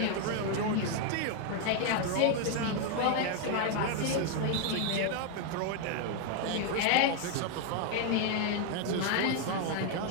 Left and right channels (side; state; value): both; different; correlation 0.01